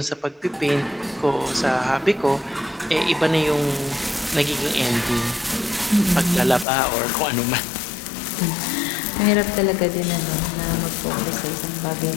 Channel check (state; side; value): drops out; right; at 6.7 s